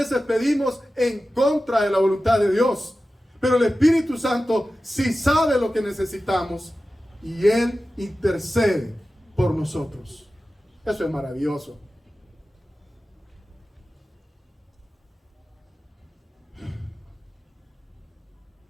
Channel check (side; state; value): both; normal; correlation 0.94